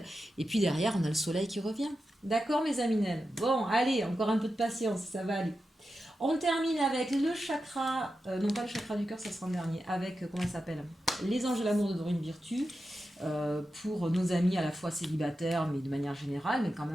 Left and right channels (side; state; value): both; normal; correlation 0.90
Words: Et puis derrière, on a le soleil qui revient. D'accord, mes aminelles. Bon, allez, encore un peu de patience, ça va aller. On termine avec le chakra, non pas le chakra du cœur, ça sera en dernier, avec, comment ça s'appelle, les anges de l'amour de Dorine Virtue. Pour nos amis à la fois célibataires, mais de manière générale, mais quand